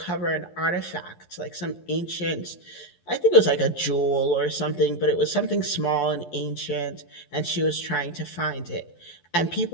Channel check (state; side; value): late; right; 12 ms